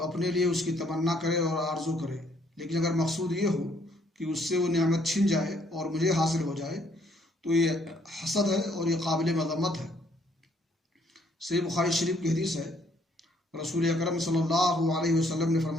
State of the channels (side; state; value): both; normal; correlation 0.66